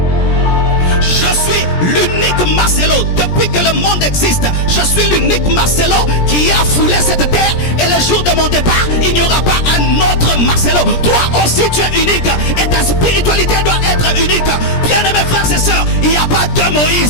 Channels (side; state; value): right; late; 17 ms